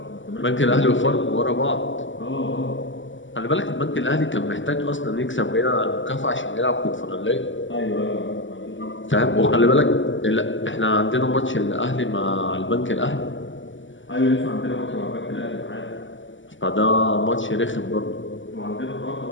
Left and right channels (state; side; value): late; right; 0.55 ms